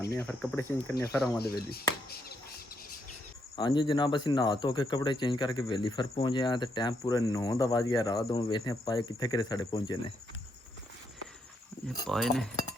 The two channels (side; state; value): both; normal; correlation 0.77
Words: फिर कपड़े चेंज करने फिर आवां दे वेली हाँ जी जनाब असीं नहा धो के कपड़े चेंज करके वेली फिर पहुँचे हैं तो टाइम पूरे 9 दा वज गया रात हूँ वेखने पाए कित्थे कित्थे साढ़े पहुँचे ने ये पाए ने